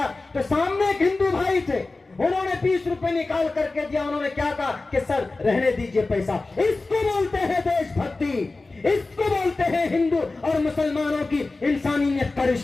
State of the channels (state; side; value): quieter; right; 3.4 dB